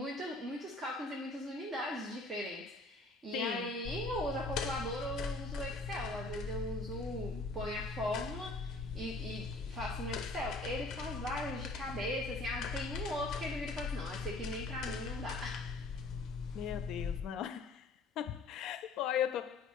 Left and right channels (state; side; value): quieter; right; 3.1 dB